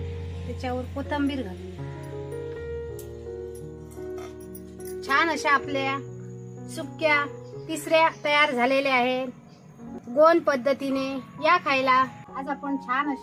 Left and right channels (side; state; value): both; identical; correlation 1.00